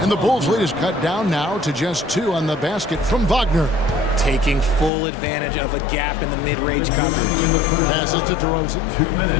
And the Bulls' lead is cut down now to just 2 on the basket from Wagner. Taking full advantage of a gap in the mid-range coverage. Passes to DeRozan. 2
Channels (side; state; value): right; drops out; at 4.9 s